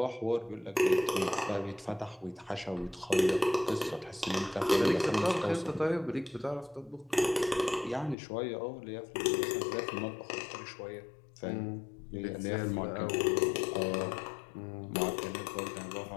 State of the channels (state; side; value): drops out; right; at 8.2 s